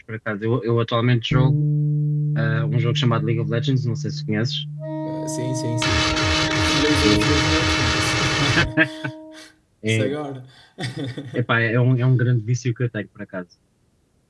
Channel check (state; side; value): identical; both; correlation 1.00